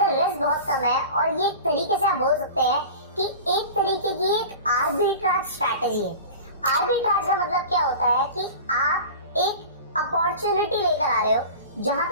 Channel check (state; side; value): inverted; both; correlation -0.36